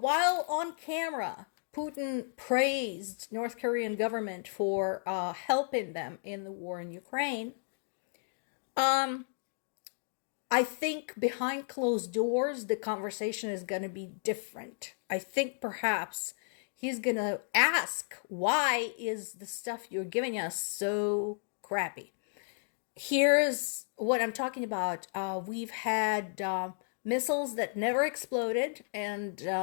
on camera, Putin praised North Korean government for helping them in the war in Ukraine, I think behind closed doors, the conversation is going to be different. I think perhaps he's going to ask, why is the stuff you're giving us so crappy? Here's what I'm talking about. We've had missiles that never exploded and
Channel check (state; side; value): silent; right; digital silence